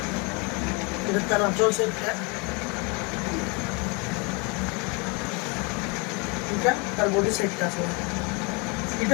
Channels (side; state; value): right; quieter; 30.7 dB